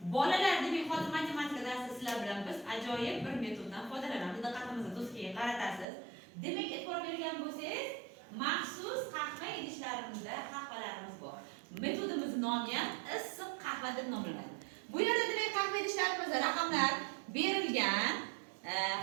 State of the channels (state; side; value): drops out; left; at 5.9 s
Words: Bolalar demak hozir matematika darsida sizlar bilan biz ajoyib bir metoddan foydalanamiz. Diqqatingizni do'stga qaratasiz. Demak, e'tibor bergan bo'lsangiz, maxsus qahva idishlarimizda qahvalarimiz bor. Metodimizning nomi ham issiq qahva deb nomlanadi. Bu yerda demak qahva idishlarimizda raqamlar berilgan.